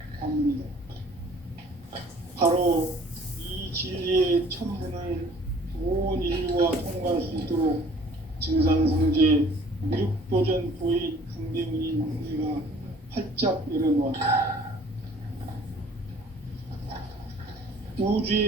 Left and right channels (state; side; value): normal; both; correlation 0.53